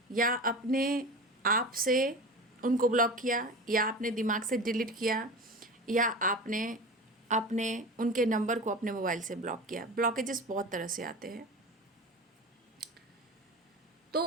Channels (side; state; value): both; normal; correlation 0.31